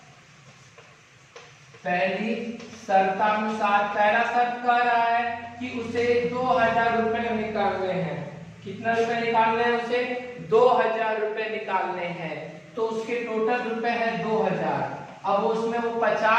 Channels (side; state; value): both; identical; correlation 1.00